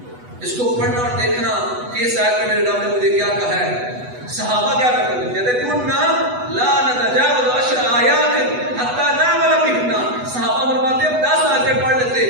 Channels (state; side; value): late; left; 8.1 ms